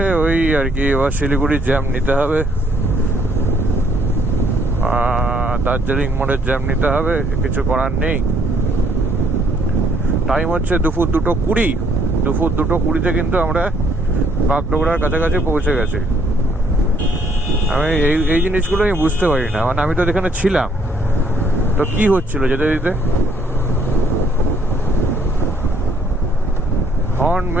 ওই আর কি, এবার শিলিগুড়ির জ্যাম নিতে হবে, দার্জিলিং মোড়ের জ্যাম নিতে হবে, কিছু করার নেই। টাইম হচ্ছে দুপুর 2:20। দুপুর 2:20-তে কিন্তু আমরা বাগডোগরার কাছাকাছি পৌঁছে গেছি। আমি এই জিনিসগুলো আমি বুঝতে পারি না, মানে আমি তো এখানে ছিলাম, তো কি হচ্ছিল যেতে দিতে। হর্ন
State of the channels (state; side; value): normal; both; correlation 0.67